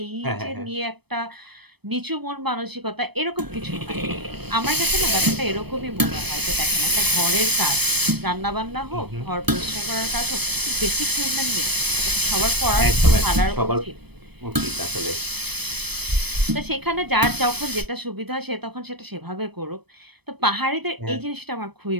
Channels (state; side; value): late; left; 0.98 ms